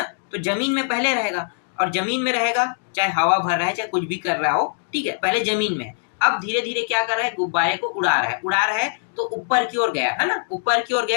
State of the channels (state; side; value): silent; right; digital silence